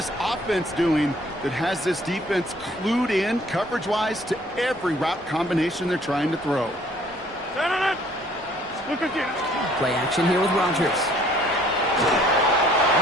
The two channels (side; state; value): both; normal; correlation 0.58